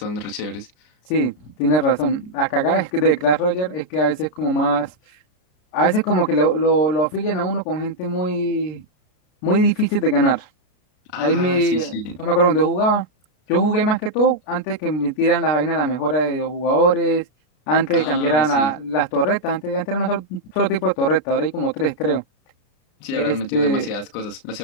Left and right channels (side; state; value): right; late; 33 ms